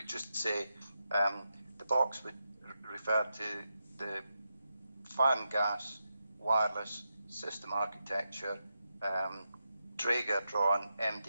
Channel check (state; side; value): inverted; both; correlation -0.87